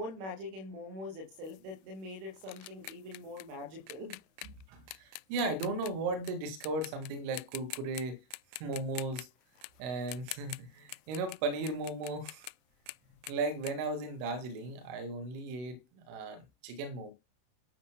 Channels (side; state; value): left; late; 31 ms